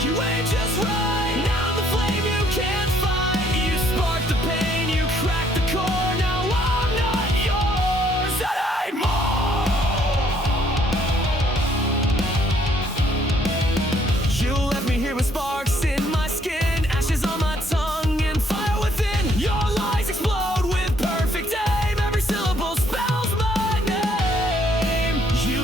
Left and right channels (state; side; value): normal; both; correlation 0.66